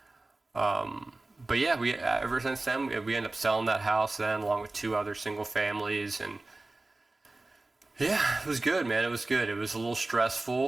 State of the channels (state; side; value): quieter; left; 3.0 dB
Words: But yeah, ever since then, we ended up selling that house then, along with 2 other single families, and yeah, it was good, man. It was good. It was a little